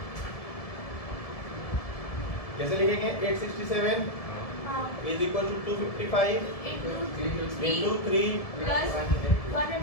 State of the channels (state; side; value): late; right; 1.7 ms